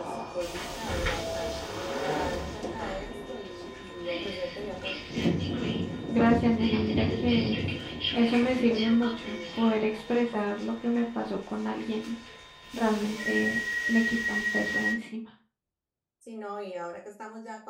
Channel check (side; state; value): both; identical; correlation 1.00